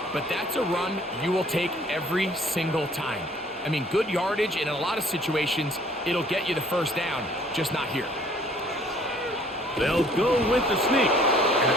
But that's a run you will take every single time. I mean, good yardage, and in a lot of situations, it'll get you the first down, just not here. They'll go with the sneak. And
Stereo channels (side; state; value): both; normal; correlation 0.57